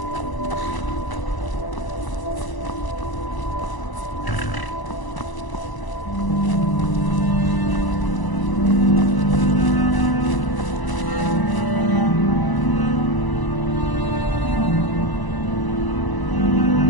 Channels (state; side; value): late; right; 1.0 ms